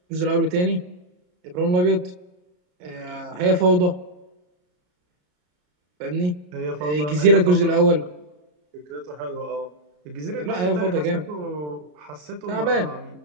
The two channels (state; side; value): late; left; 33 ms